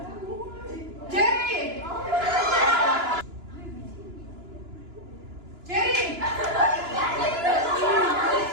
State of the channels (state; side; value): late; left; 2.9 ms